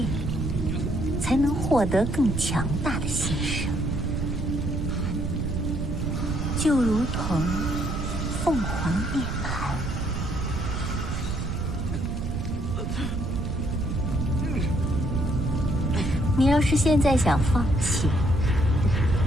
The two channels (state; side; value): noise; right; rumble, 3 dB below the sound